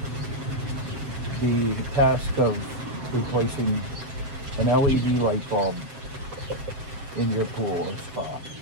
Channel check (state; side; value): late; left; 7.4 ms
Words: the task of replacing an LED light bulb in your pool or spa.